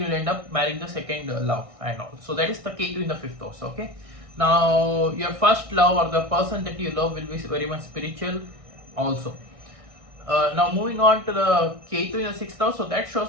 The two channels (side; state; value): left; late; 1.6 ms